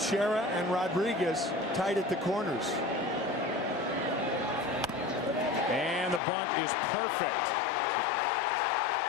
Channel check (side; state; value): right; drops out; at 6.2 s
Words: and Rodriguez tight at the corners. And the bunt is perfect